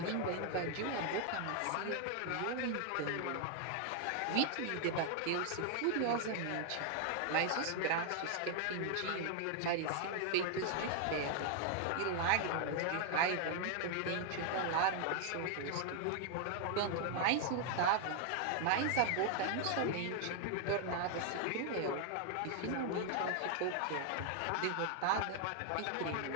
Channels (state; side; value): different; both; correlation 0.00